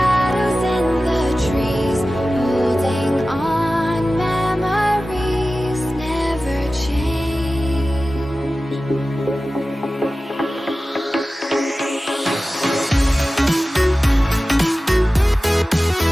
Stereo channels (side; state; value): both; normal; correlation 0.96